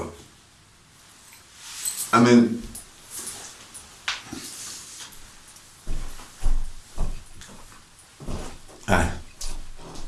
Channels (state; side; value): identical; both; correlation 1.00